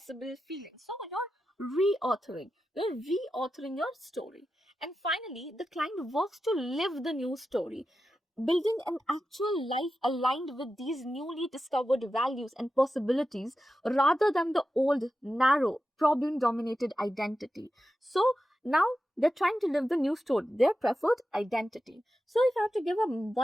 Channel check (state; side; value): normal; both; correlation 0.91